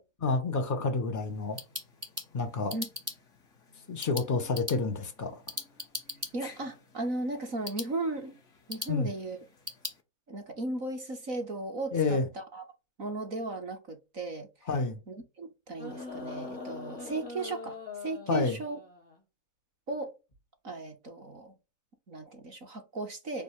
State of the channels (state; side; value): late; left; 3.5 ms